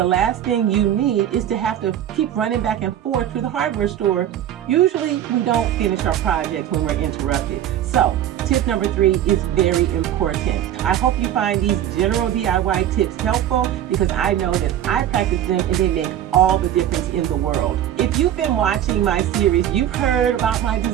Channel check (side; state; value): left; quieter; 11.0 dB